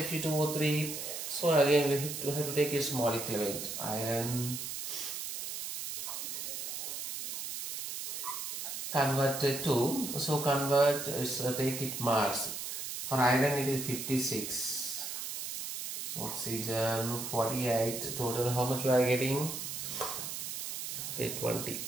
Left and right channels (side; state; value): right; noise; hiss, 5 dB below the sound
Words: So again we have to take its molecular weight. Iron converted to, so convert, take it mass. For iron it is 56. So oxygen 48. Total how much we are getting? Okay, 20.